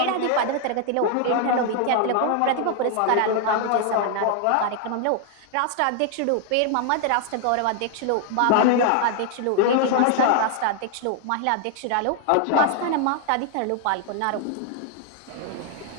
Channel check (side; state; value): both; different; correlation 0.00